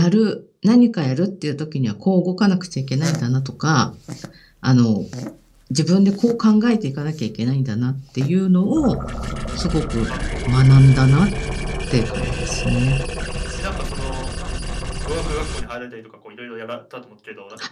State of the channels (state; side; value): identical; both; correlation 1.00